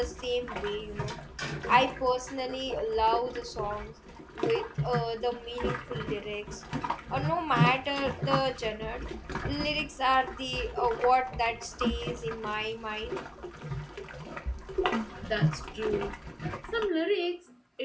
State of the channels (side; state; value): both; identical; correlation 1.00